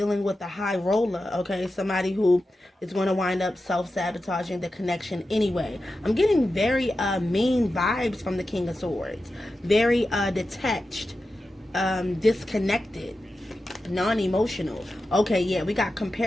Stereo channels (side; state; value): both; normal; correlation 0.92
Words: with the high roller. Okay, somebody who is going to wind up self-sabotaging the connection anyway. I'm getting very mean vibes from the King of Swords. Very detached, disconnected, non-emotional. Okay, yeah, we got